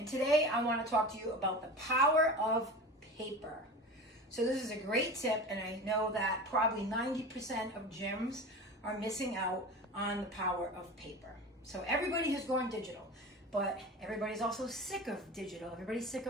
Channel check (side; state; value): both; normal; correlation 0.32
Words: today I want to talk to you about the power of paper. So this is a great tip, and I know that probably 90% of gyms are missing out on the power of paper. So everybody has gone digital, but everybody's also sick of digital. Everybody's sick